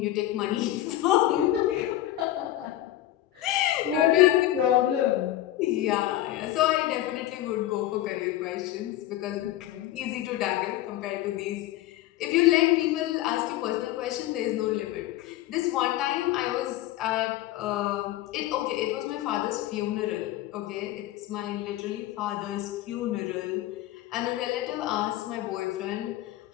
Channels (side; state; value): right; quieter; 14.1 dB